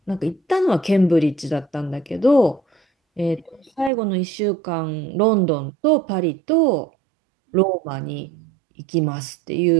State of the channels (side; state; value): left; drops out; at 3.9 s